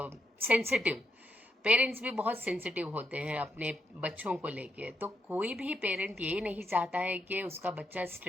sensitive. Parents भी बहुत सेंसिटिव होते हैं अपने बच्चों को लेके। तो कोई भी पेरेंट ये नहीं चाहता है कि उसका बच्चा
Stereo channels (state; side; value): normal; both; correlation 0.80